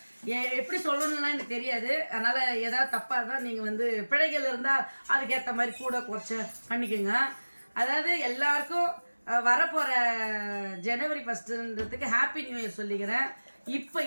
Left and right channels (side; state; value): both; inverted; correlation -1.00